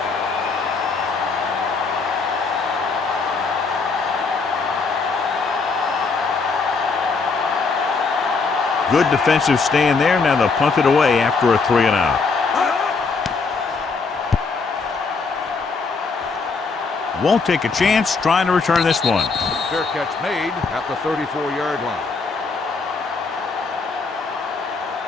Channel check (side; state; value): right; quieter; 4.5 dB